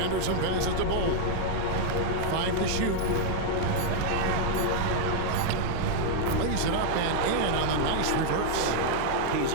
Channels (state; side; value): different; both; correlation 0.00